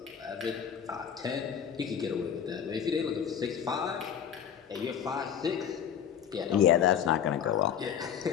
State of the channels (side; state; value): right; quieter; 8.5 dB